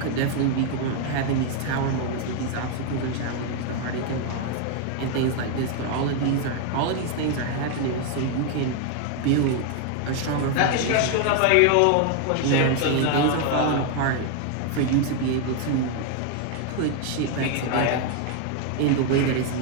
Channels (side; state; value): both; different; correlation 0.00